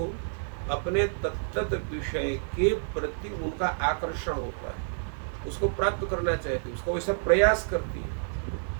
अपने तत्त विषय के प्रति उनका आकर्षण होता है, उसको प्राप्त करना चाहती है, उसका वैसा प्रयास करती है,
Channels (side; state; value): left; silent; 59 dB below the other